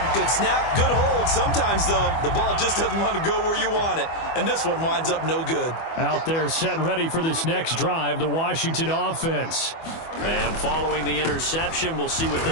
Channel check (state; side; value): late; right; 24 ms